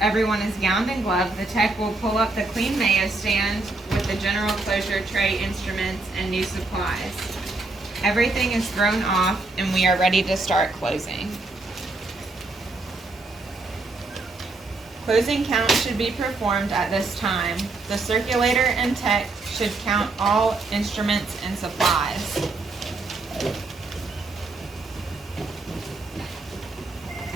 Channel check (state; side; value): quieter; left; 3.3 dB